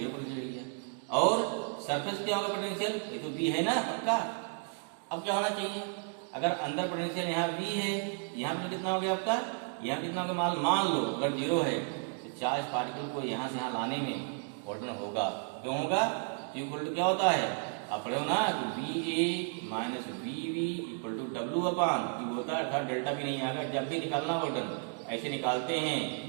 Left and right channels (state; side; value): quieter; left; 39.2 dB